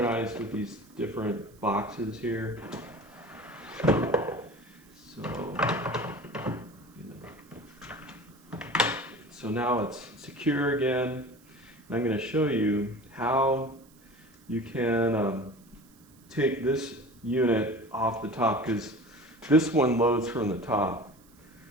with these different boxes here. So now it's secure again. And I'm going to show you how you can take this unit off the top, because this one loads from the top.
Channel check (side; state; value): right; noise; hiss, 28 dB below the sound